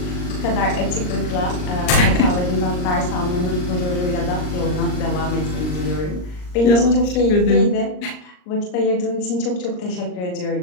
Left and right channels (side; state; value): right; late; 39 ms